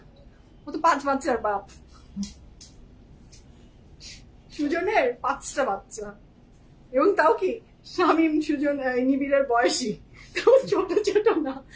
ও তো 5 বাচ্চার বাপ। সুজনের 5টা বাচ্চা, এবং তাও কি শামীম সুজন নিবিড়ের বয়সী, ছোট ছোট না,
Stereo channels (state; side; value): identical; both; correlation 1.00